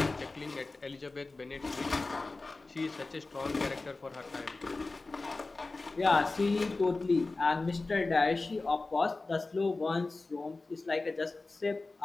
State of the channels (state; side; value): quieter; right; 3.4 dB